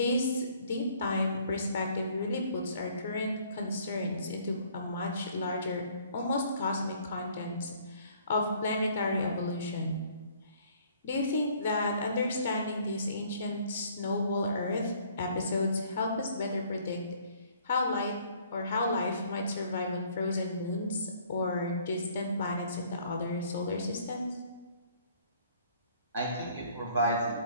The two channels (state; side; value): inverted; both; correlation -0.59